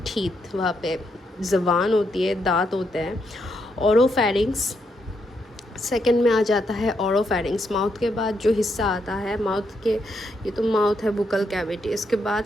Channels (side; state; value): both; normal; correlation 0.79